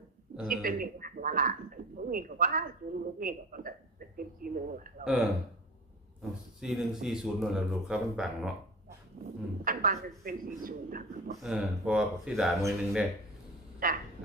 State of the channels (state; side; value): normal; both; correlation 0.35